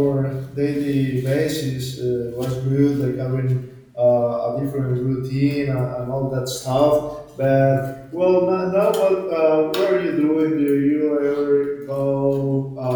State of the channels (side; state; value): both; identical; correlation 1.00